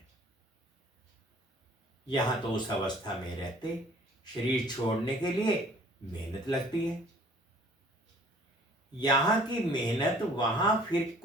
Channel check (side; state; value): both; normal; correlation 0.54